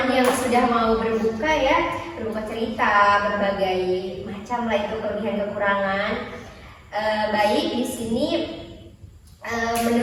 yang sudah mau berbuka ya, berbuka cerita berbagai macam lah itu kelebihan kekurangan. Baik di sini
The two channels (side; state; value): both; identical; correlation 1.00